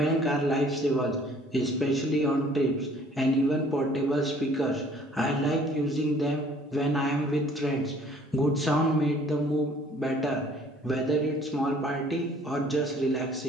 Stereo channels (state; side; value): normal; both; correlation 0.56